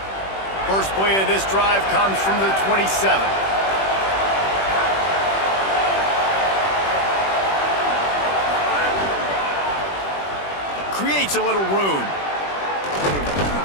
First play of this drive comes from the 27. Creates a little room.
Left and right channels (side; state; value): right; late; 21 ms